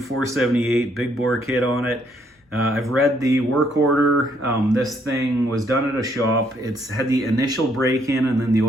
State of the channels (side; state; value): both; normal; correlation 0.70